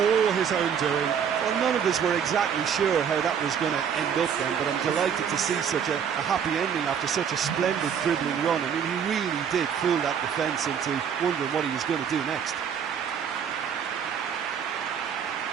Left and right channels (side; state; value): left; quieter; 7.8 dB